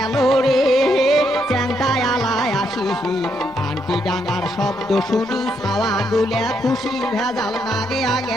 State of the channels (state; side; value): normal; both; correlation 0.77